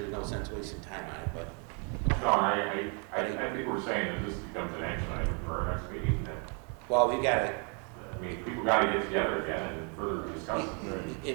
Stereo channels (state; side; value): quieter; left; 37.7 dB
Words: no sense wasting time on it, but, No, I think we're saying that this becomes an action item for our next meeting, that, well, we've got to, I mean, people gotta get together again and further discuss it.